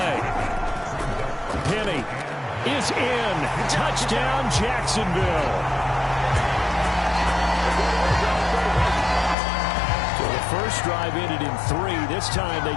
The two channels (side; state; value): right; drops out; at 9.3 s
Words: Penny is in. Touchdown, Jacksonville. So the first drive ended in 3. This time they